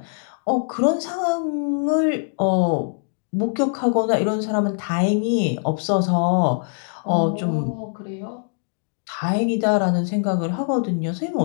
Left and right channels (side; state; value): right; silent; 64 dB below the other